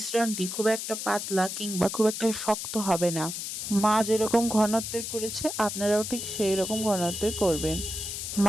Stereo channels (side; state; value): left; noise; hiss, 5 dB below the sound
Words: খুব একটা পাতলা কিংবা খুব একটা শক্ত হবে না। মা যেরকম ঘনত্বের করেছে আপনারাও ঠিক সেই রকম ঘনত্বের করবেন।